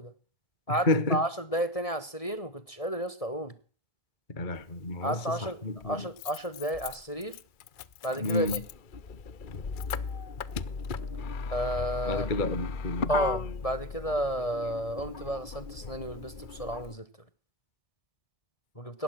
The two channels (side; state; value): right; late; 2.3 ms